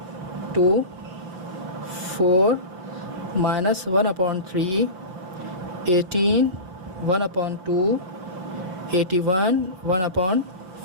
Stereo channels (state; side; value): late; left; 5.8 ms